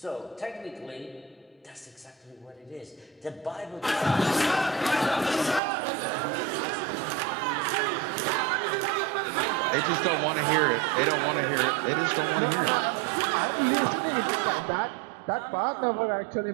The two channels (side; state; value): left; drops out; at 5.6 s